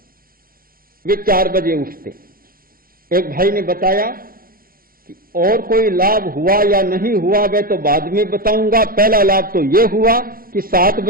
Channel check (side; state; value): left; late; 0.42 ms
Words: वे 4 बजे उठते। एक भाई ने बताया कि और कोई लाभ हुआ या नहीं हुआ वह तो बाद में बताऊंगा, पहला लाभ तो यह हुआ कि 7